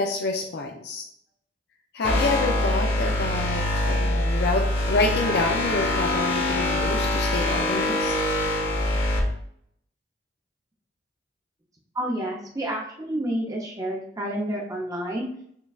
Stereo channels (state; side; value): normal; both; correlation 0.43